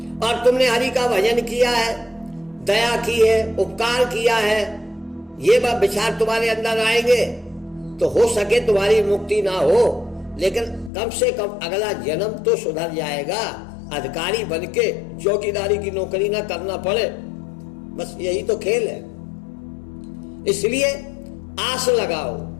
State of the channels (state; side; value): drops out; right; at 10.9 s